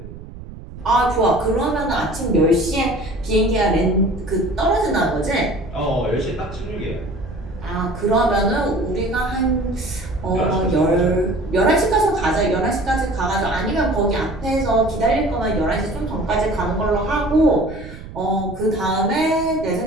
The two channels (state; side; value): noise; right; rumble, 14 dB below the sound